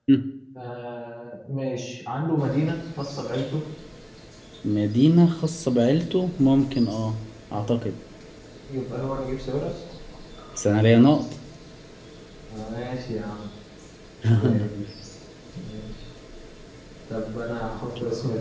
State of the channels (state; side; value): identical; both; correlation 1.00